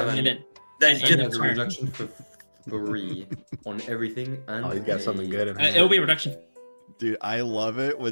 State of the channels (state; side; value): inverted; both; correlation -1.00